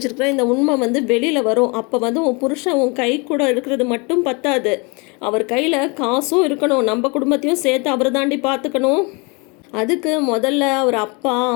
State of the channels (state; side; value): quieter; right; 30.2 dB